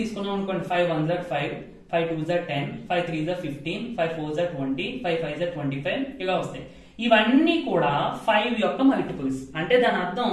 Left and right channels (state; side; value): identical; both; correlation 1.00